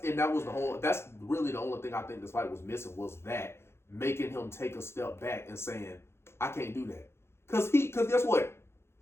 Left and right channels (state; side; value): late; right; 0.12 ms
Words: saying? That's really the only thing I think this fight was missing, was that. Making him take a step back and saying, I can't do that. Because guess what?